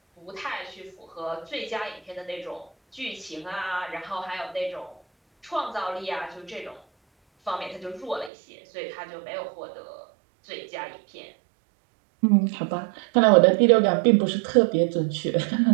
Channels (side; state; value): left; drops out; at 8.3 s